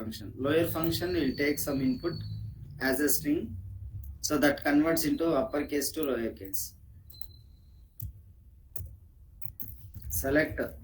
Lower function will take some input as a string, so that converts into uppercase to lowercase. Select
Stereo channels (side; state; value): both; identical; correlation 1.00